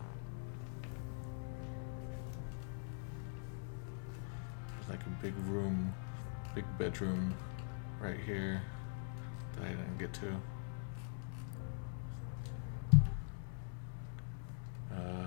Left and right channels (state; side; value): silent; right; digital silence